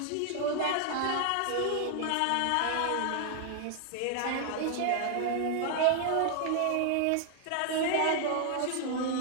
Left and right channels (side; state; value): both; different; correlation 0.00